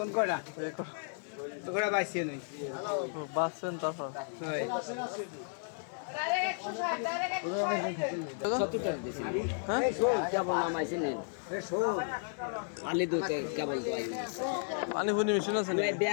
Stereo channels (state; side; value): silent; right; 55 dB below the other